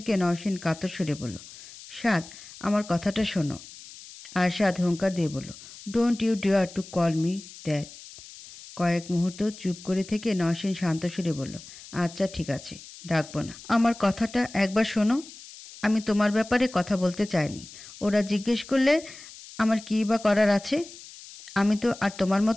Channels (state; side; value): noise; left; hiss, 17 dB below the sound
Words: নওশিন কাতর সুরে বলল, সাদ আমার কথাটা শোনো। আরশাদ হুঙ্কার দিয়ে বলল, don't you dare to call me that. কয়েক মুহূর্ত চুপ করে থেকে নওশিন শান্ত সুরে বলল, আচ্ছা ঠিক আছে, ডাকবো না। আমার কথাটা একবার শোনো। আমি তোমার ব্যাপারে কথা বলতে চাইনি। ওরা জিজ্ঞেস করলে আমার কী বা করার আছে? আমি তো আর তোমার